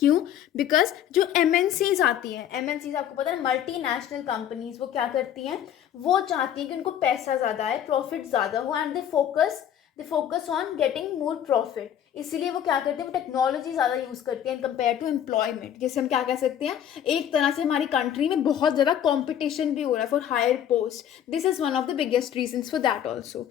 बिकॉज जो एमएनसीज आती हैं, एमएनसीज आपको पता है मल्टीनेशनल कंपनीज, वो क्या करती हैं? वो चाहती हैं कि उनको पैसा ज़्यादा आए, प्रॉफिट ज़्यादा हो, and they focus on getting more profit. इसीलिए वो क्या करते हैं? वो टेक्नोलॉजी ज़्यादा यूज़ करती हैं इन कंपेयर टू एम्प्लॉयमेंट। जैसे हम क्या कह सकते हैं, एक तरह से हमारी कंट्री में बहुत ज़्यादा कॉम्पिटिशन भी हो रहा है for higher post. This is one of the biggest reasons for that also.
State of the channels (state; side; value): quieter; right; 10.0 dB